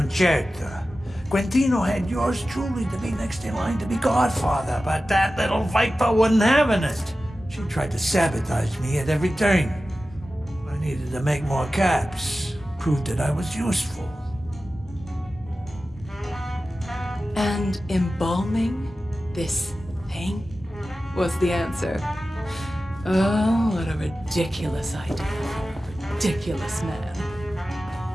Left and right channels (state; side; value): normal; both; correlation 0.94